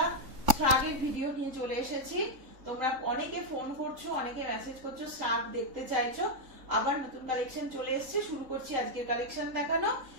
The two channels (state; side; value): late; left; 3.6 ms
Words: শ্রাগের ভিডিও নিয়ে চলে এসেছি। তোমরা অনেকে ফোন করছো, অনেকে মেসেজ করছো, শ্রাগ দেখতে চাইছো। আবার নতুন কালেকশন চলে এসেছে, শুরু করছি আজকের কালেকশন দেখানো।